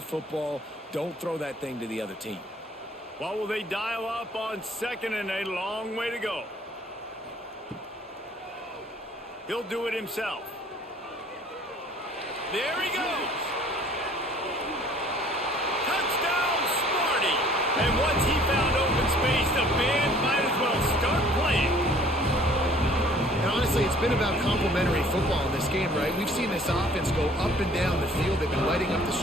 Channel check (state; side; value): normal; both; correlation 0.55